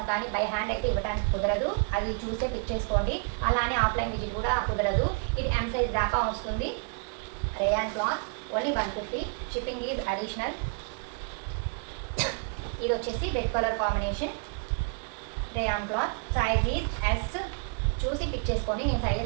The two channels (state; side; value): quieter; left; 38.6 dB